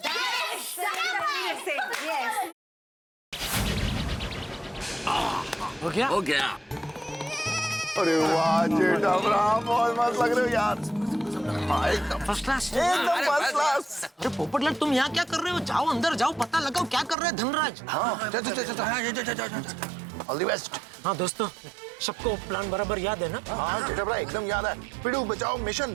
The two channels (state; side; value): drops out; left; at 17.2 s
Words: हो गया। अरे वाह जेठामराव, बहुत मस्त लग रहे हो यार। एकदम फर्स्ट क्लास। एकदम फर्स्ट क्लास। अरे पोपटलाल, तुम यहाँ क्या कर रहे हो? जाओ अंदर जाओ, पता लगाओ क्या कर रहे हैं धनराज। हाँ, ऑल द बेस्ट। हाँ दोस्तों, सबको प्लान बराबर याद है ना? हाँ जेठामराव, एकदम याद है। पिड़ू बचाओ मिशन